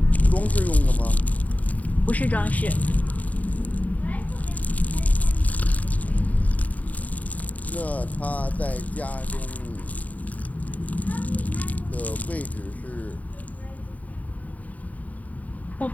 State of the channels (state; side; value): late; right; 0.072 ms